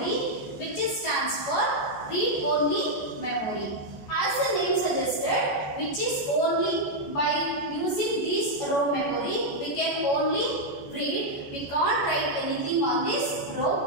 which stands for read only memory. As the name suggested, which is only by using this ROM memory, we can only read. We can't write anything on this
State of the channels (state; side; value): late; right; 14 ms